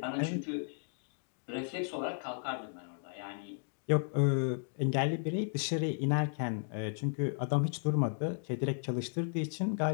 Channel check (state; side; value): silent; right; digital silence